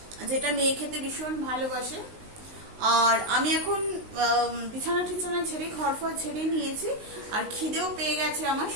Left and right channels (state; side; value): late; left; 19 ms